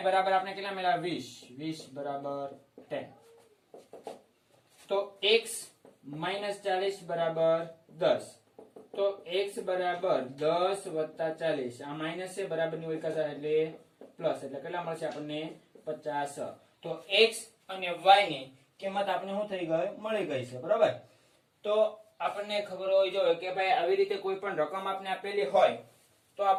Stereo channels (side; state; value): both; identical; correlation 1.00